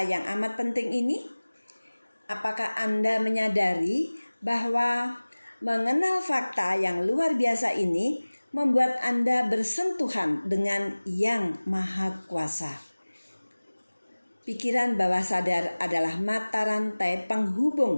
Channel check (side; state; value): both; inverted; correlation -1.00